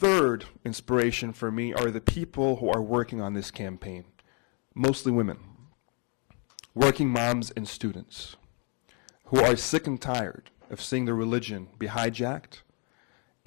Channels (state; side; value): quieter; right; 37.3 dB